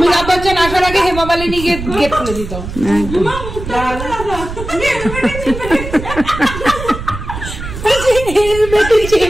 বচ্চন আসার আগে হেমা মালিনী গেট খুলে দিত।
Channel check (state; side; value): noise; right; rumble, 9 dB below the sound